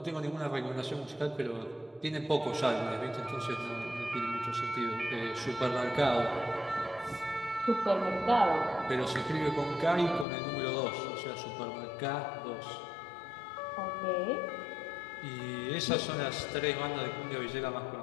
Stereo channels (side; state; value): right; drops out; at 10.2 s